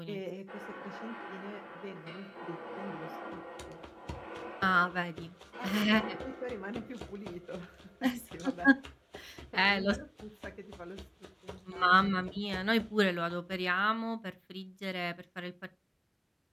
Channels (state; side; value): identical; both; correlation 1.00